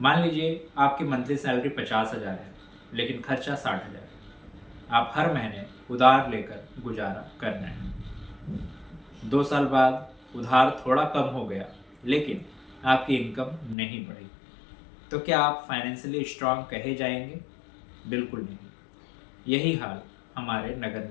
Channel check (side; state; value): right; drops out; at 13.8 s